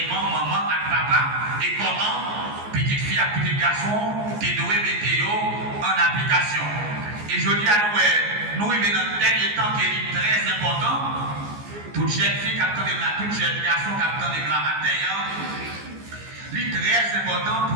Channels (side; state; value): left; late; 14 ms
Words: maman et papa, et comment petite fille et petit garçon, tu dois mettre en application. Et je dis à nous, nous vivons dans le dernier temps qui est très important. Toute jeune fille qui attend de la, toute jeune garçon qui attend de la matin, c'est très important